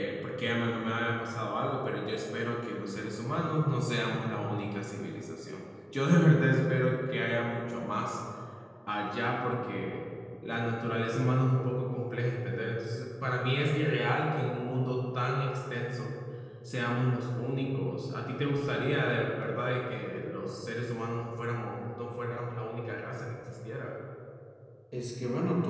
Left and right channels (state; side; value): identical; both; correlation 1.00